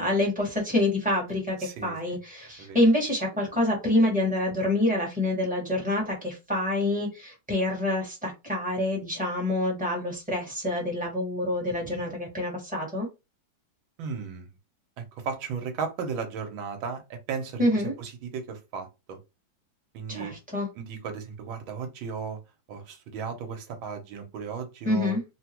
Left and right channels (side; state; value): both; normal; correlation 0.33